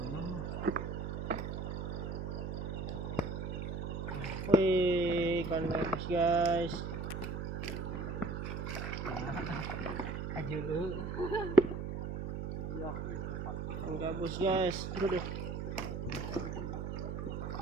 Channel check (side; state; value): right; noise; hum, 3 dB below the sound